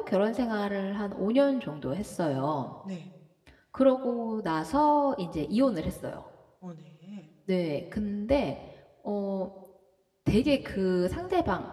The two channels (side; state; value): both; identical; correlation 1.00